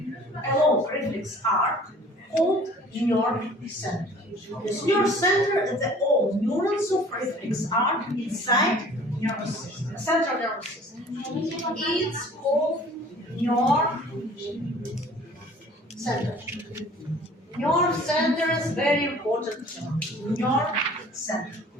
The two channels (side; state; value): both; normal; correlation 0.49